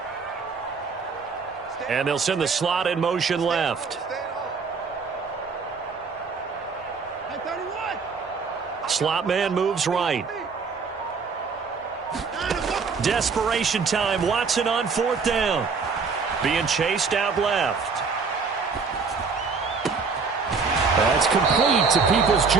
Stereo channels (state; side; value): quieter; left; 5.0 dB